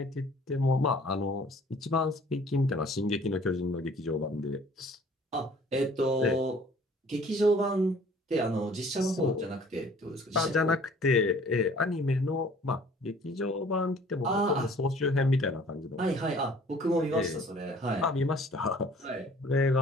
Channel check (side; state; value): both; normal; correlation 0.53